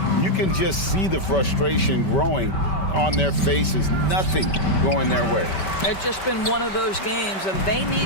you can just see the frustration growing on their faces. Nothing going their way. It's just been one of those games, and they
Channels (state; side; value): late; right; 5.2 ms